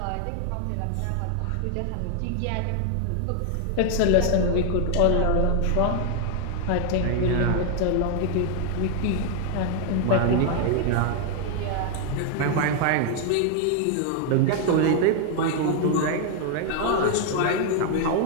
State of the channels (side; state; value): both; different; correlation 0.00